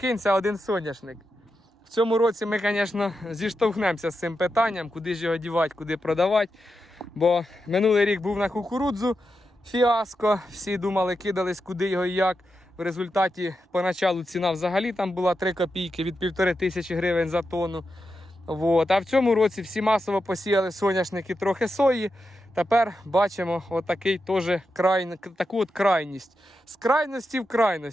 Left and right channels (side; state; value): both; normal; correlation 0.88